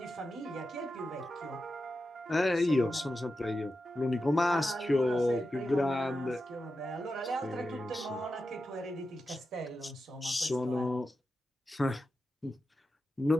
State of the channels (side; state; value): both; normal; correlation 0.90